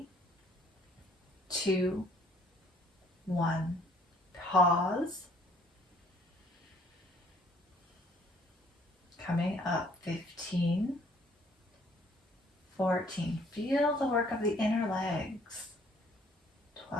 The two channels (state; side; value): normal; both; correlation 0.60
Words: 2, 1. Pause. Coming up, 15, 14. Feel the work of the inner legs.